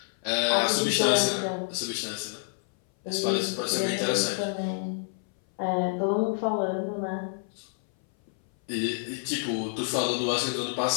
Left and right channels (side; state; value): right; silent; 58 dB below the other